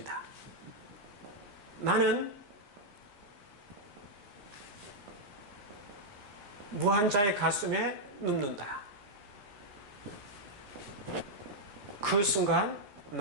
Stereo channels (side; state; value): left; late; 14 ms